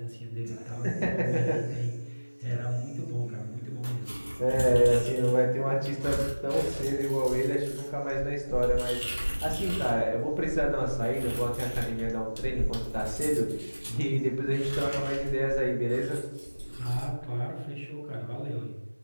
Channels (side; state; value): both; inverted; correlation -1.00